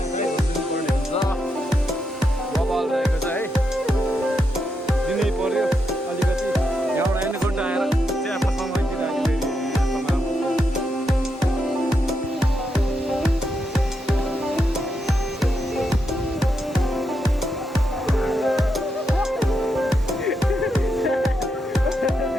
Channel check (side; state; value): both; normal; correlation 0.83